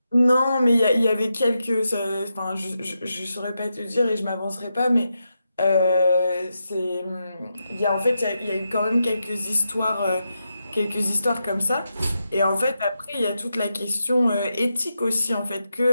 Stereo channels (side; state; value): both; inverted; correlation -0.87